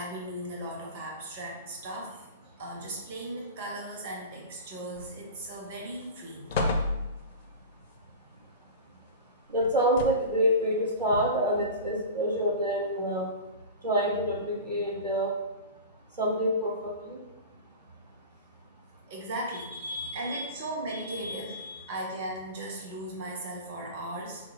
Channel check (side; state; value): both; inverted; correlation -0.32